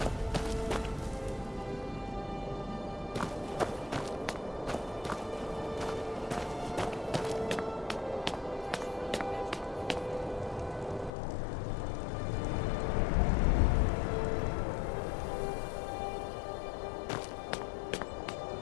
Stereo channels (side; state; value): right; drops out; at 11.1 s